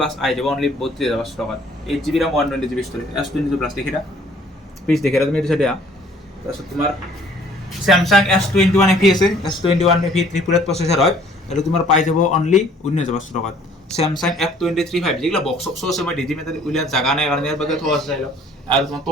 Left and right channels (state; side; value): normal; both; correlation 0.57